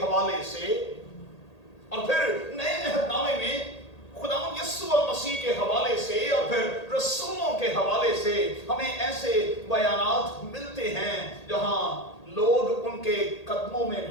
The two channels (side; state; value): right; late; 1.8 ms